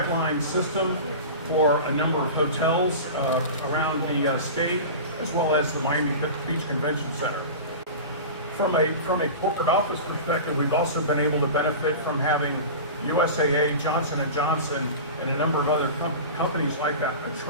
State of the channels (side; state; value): both; inverted; correlation -0.31